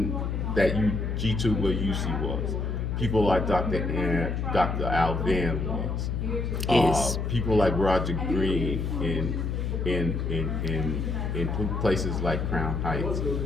that G2 UC was. People like Dr. Al Van was. People like Roger Green in places like Crown Heights.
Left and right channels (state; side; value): noise; left; hum, 1 dB below the sound